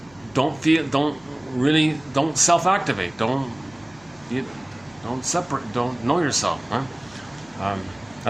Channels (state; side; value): noise; left; hum, 27 dB below the sound